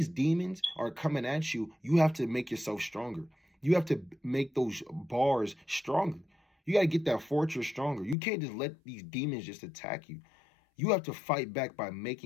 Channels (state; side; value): drops out; right; at 8.2 s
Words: demons are coming at you, you have to make yourself stronger. You have to make those bars stronger. You got to get that fortress stronger. You can't just let these demons just attack you. You have to fight back by